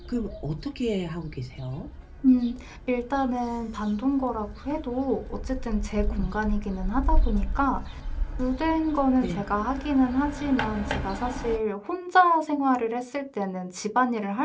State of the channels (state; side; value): identical; both; correlation 1.00